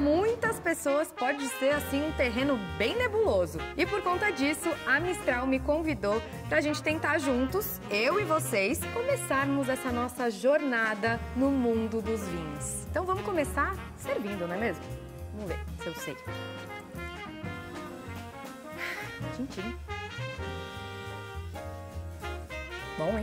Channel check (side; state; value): both; identical; correlation 1.00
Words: pessoas pode ser assim um terreno bem nebuloso. E por conta disso, a Mistral me convidou pra gente tentar juntos, eu e vocês, começarmos essa nossa jornada no mundo dos vinhos. Então vamos começar servindo, não é mesmo? Vamos ver se eu sei. Tchim-tchim. Bom,